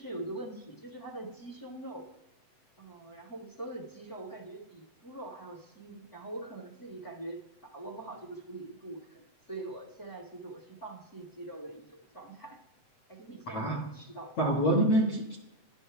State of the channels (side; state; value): right; late; 7.8 ms